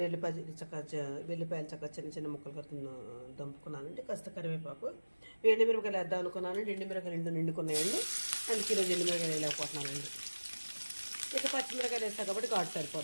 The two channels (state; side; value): inverted; both; correlation -1.00